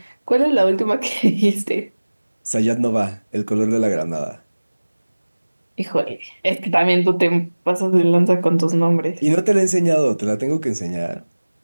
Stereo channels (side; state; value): both; inverted; correlation -1.00